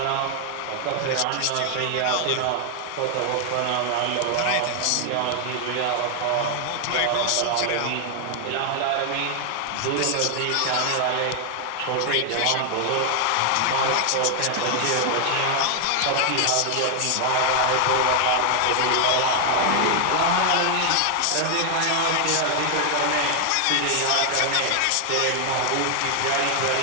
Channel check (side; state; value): both; different; correlation 0.00